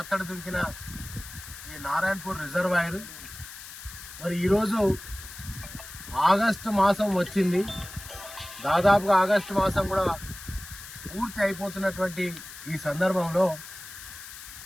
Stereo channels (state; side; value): noise; left; hiss, 14 dB below the sound